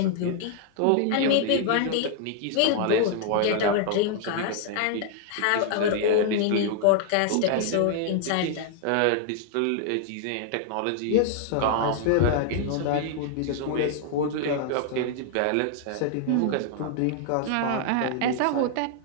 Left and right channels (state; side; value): different; both; correlation 0.00